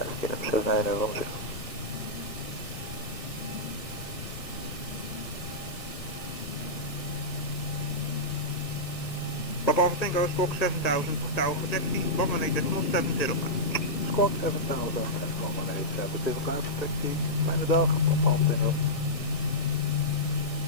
KLM 7910. Papa Alpha Tango, squawk 7000, tower for taxi, 118.705. Squawk 7000, 118.705, taxi, fijne dag, Papa Alpha Tango.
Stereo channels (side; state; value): right; late; 1.6 ms